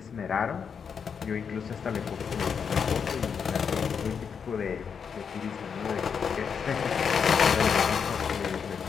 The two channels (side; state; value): right; quieter; 6.6 dB